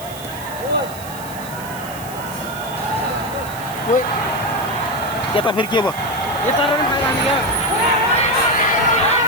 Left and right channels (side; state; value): right; noise; hiss, 15 dB below the sound